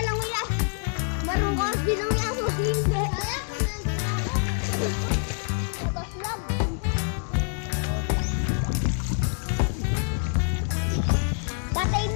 lang yan. Marunong bilang yan. Hindi. Tapos lang. Patay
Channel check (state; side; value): silent; right; 58 dB below the other